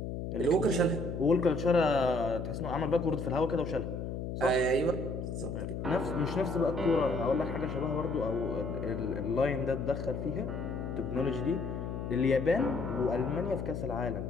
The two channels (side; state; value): left; noise; hum, 5 dB below the sound